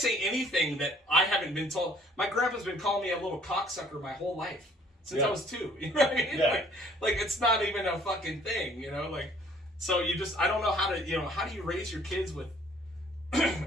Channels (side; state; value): both; normal; correlation 0.58